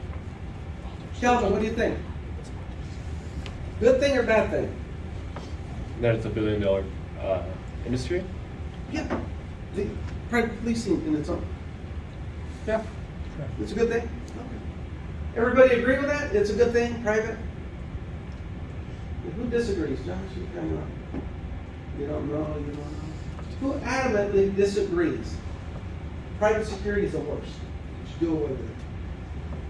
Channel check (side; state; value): both; identical; correlation 1.00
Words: Calvin, what do you think? Good thing or bad thing? That it's a $1 billion industry? Yeah. The private policing in its own. Yeah. It's a good thing? Okay. Everybody agree with that? It's a good thing, private? Who disagrees? Josh, you kind of, you don't know, you don't know. Who adamantly disagrees? Private security is the worst. Do away with it.